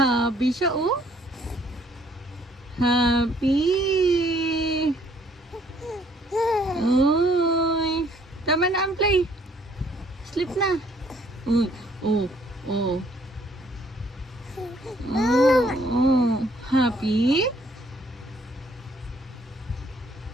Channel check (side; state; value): both; normal; correlation 0.63